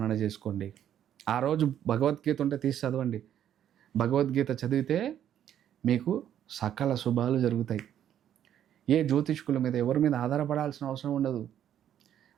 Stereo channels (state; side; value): quieter; left; 10.3 dB